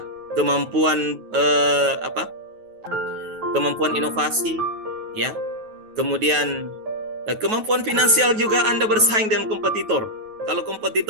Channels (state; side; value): late; left; 9.3 ms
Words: kemampuan kemampuan inovasi, ya, kemudian kemampuan finansial juga Anda bersaing dengan kompetitor. Kalau